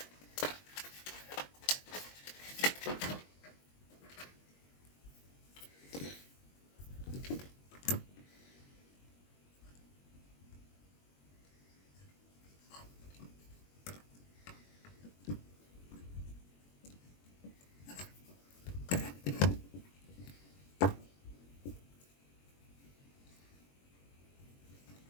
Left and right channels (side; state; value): right; late; 21 ms